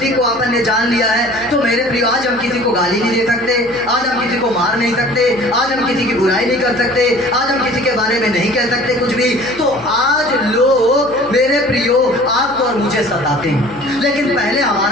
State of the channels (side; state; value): left; noise; hum, 20 dB below the sound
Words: को अपन ने जान लिया है, तो मेरे प्रिय आज हम किसी को गाली नहीं दे सकते, आज हम किसी को मार नहीं सकते, आज हम किसी की बुराई नहीं कर सकते, आज हम किसी के बारे में नहीं कह सकते कुछ भी। तो आज लोग मेरे प्रियो आपको और मुझे सताते हैं, लेकिन पहले